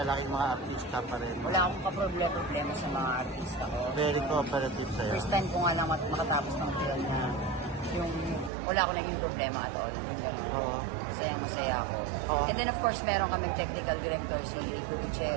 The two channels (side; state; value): left; drops out; at 8.5 s